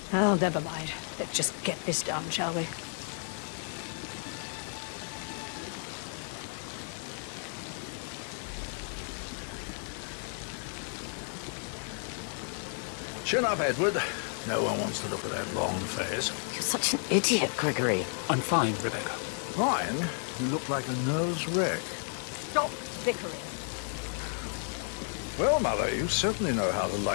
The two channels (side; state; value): right; silent; 56 dB below the other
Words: Oh, never mind. Let's just get this done, shall we? Chin up, Edward. No one wants to look at that long face. You're such an idiot, Gregory. I'm fine, Rebecca. Ryan, you look like a nervous wreck. Stop bickering. Well, Mother, you certainly know how to